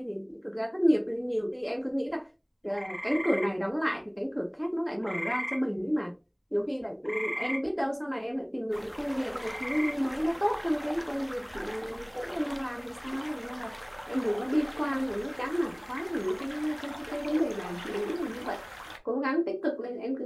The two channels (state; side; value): identical; both; correlation 1.00